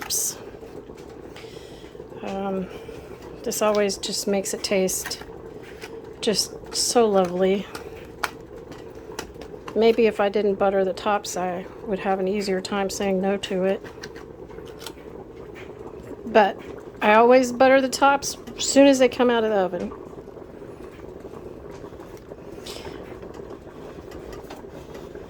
This always just makes it taste just so lovely. Maybe if I didn't butter the tops, I would have an easier time saying no to it. But I always butter the tops as soon as they come out of the oven.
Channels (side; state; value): both; identical; correlation 1.00